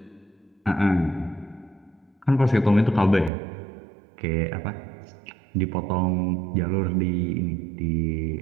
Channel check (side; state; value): left; drops out; at 3.3 s